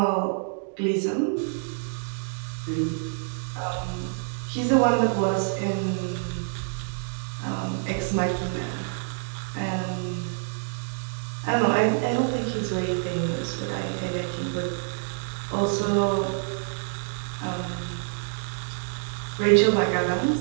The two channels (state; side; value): silent; left; digital silence